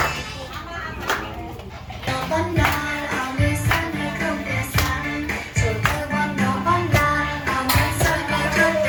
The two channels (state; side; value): identical; both; correlation 1.00